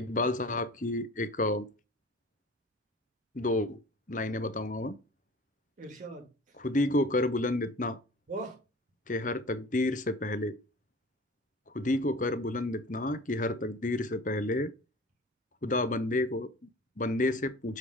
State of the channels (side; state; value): both; normal; correlation 0.42